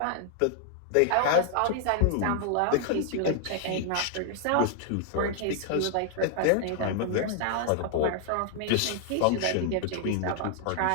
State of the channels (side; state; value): both; different; correlation 0.00